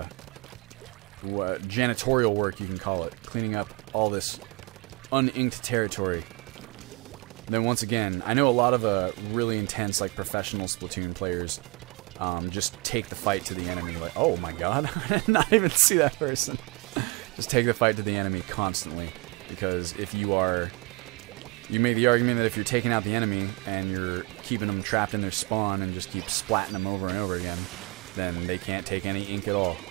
janitorial work, you can call it, cleaning up all this uninked territory. Then once again, I know a lot of really intense, like, professional Splatoon players just take the fight to the enemy. Like, oh my god, I did not even see that person. Just take the fight to the enemy constantly, because if you are... You make the argument that if you're taking out the enemy and you're keeping them trapped in their spawn and just keep splatting them over and over again, then they can't take any ink at all.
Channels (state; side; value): quieter; left; 26.8 dB